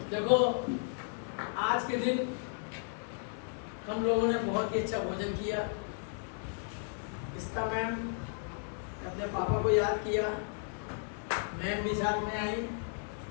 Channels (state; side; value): silent; right; 55 dB below the other